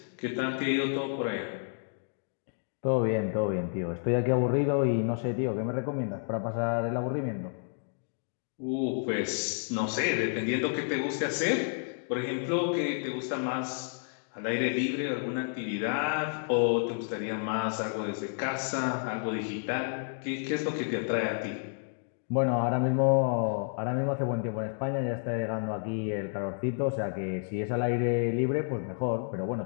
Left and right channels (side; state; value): right; silent; digital silence